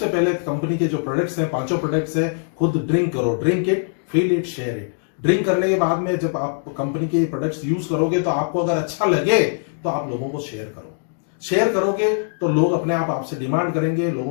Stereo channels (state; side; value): silent; right; digital silence